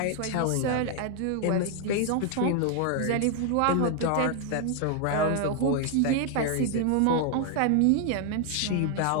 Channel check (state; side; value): different; both; correlation 0.00